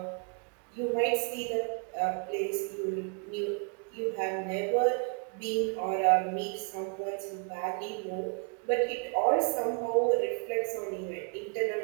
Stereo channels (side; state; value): left; quieter; 37.0 dB